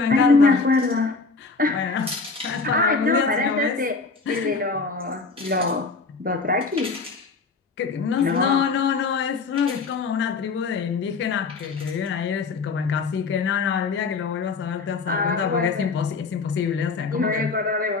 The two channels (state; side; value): quieter; right; 4.3 dB